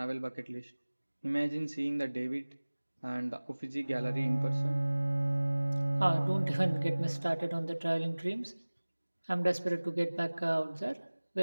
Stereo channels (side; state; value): both; inverted; correlation -1.00